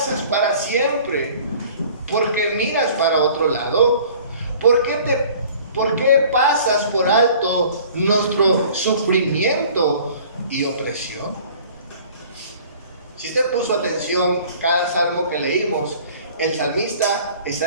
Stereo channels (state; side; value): inverted; both; correlation -0.50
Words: para siempre. ¿Por qué miras para otro lado? ¿Por qué pasas por alto nuestro sufrimiento y opresión? Si usted puso atención cada salmo que leímos, el salmista